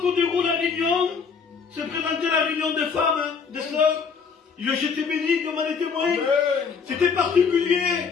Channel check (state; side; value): quieter; right; 5.8 dB